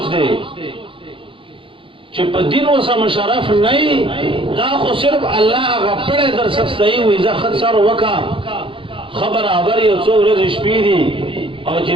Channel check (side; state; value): left; late; 0.25 ms